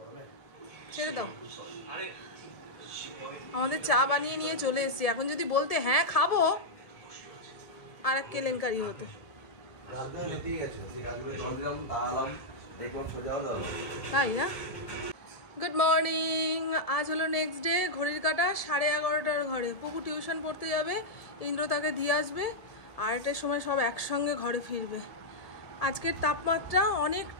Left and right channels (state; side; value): late; right; 1.7 ms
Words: ছেড়ে দাও। আমাদের চা বানিয়ে নিয়ে চলে এসেছি। এখন যদি বলতে হ্যাঁ খাবো, আর এক কেলেঙ্কারি হতো। তাই না? Good morning. আজ হলো নেক্সট ডে। ঘড়ির কাটা 11:30টার ঘরে। পুকু টিউশন পড়তে যাবে, ইন্দ্র তাকে দিয়ে আসবে, 2টার সময় সব একসঙ্গে ঘরে ফিরবে। আজকের তাপমাত্রা